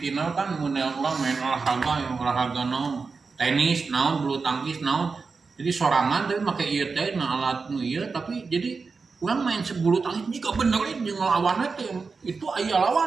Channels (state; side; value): quieter; left; 4.7 dB